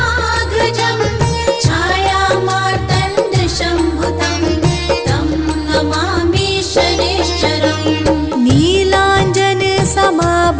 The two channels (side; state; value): both; identical; correlation 1.00